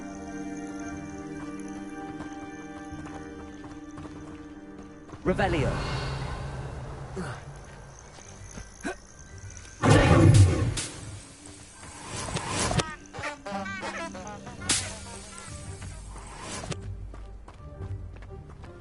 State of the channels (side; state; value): both; identical; correlation 1.00